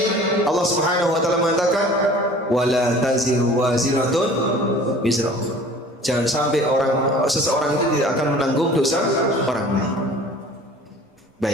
Allah Subhanahu wa taala mengatakan, wala taziru waziratun wizra ukhra. Jangan sampai seseorang itu tidak akan menanggung dosa orang lain.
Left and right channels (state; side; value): normal; both; correlation 0.46